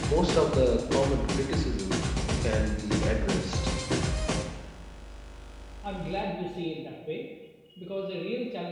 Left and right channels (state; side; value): identical; both; correlation 1.00